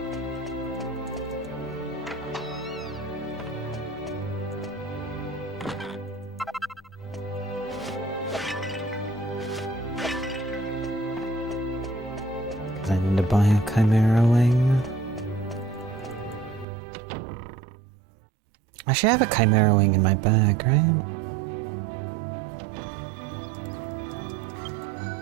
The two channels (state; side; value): drops out; left; at 16.7 s